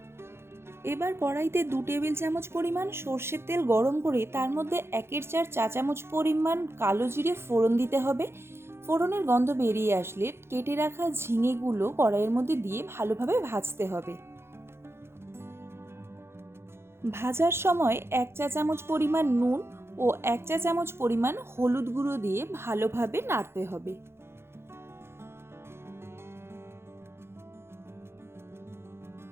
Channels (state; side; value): late; left; 0.12 ms